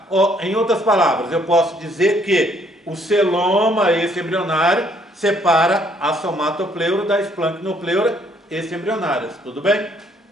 Ou, em outras palavras, eu posso dizer que o celoma extraembrionário separa a somatopleura da esplanchnopleura extraembrionárias, tudo bem?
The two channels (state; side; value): normal; both; correlation 0.66